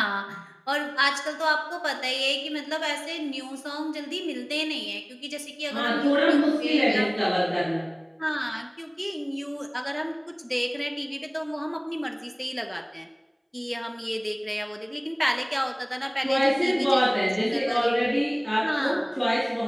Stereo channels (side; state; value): both; identical; correlation 1.00